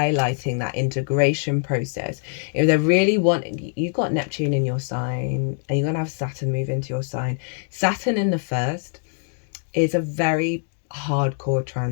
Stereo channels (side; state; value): right; silent; digital silence